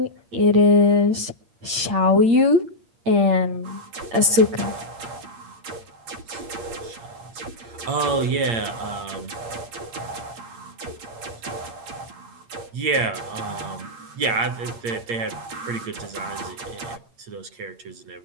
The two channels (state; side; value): late; left; 8.7 ms